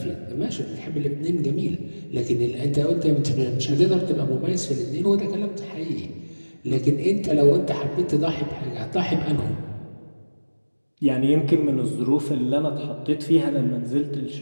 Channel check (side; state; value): both; inverted; correlation -1.00